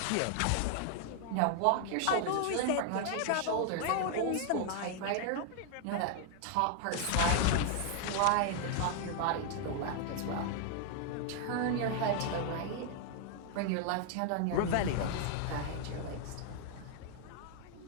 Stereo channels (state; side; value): different; both; correlation 0.00